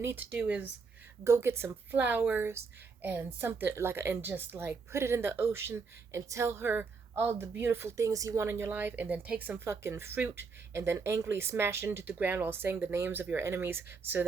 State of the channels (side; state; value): left; quieter; 4.9 dB